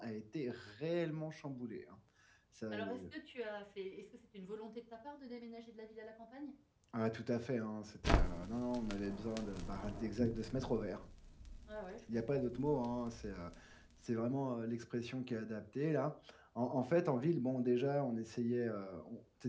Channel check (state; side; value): identical; both; correlation 1.00